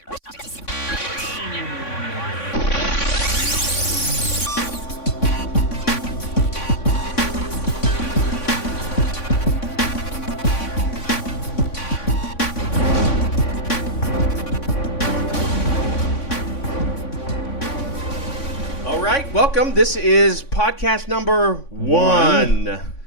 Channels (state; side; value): late; right; 3.5 ms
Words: All right, welcome. This is podcast number one